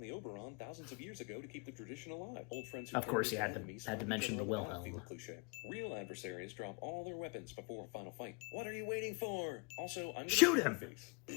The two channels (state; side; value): quieter; right; 32.4 dB